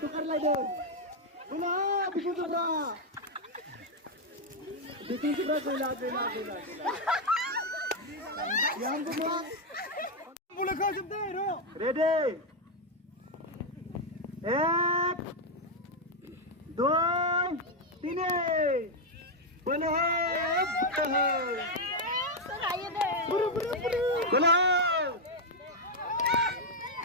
lagi boleh Bihamzu Partini lagi Bihamzu Partini boleh kau jemput ready 1, 2, 3 Boleh. Buru. Boleh.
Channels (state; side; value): normal; both; correlation 0.02